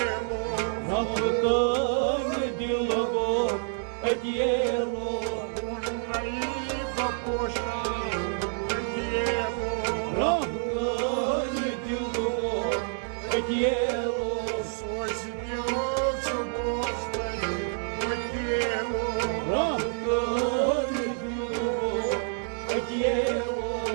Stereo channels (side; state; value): left; silent; 59 dB below the other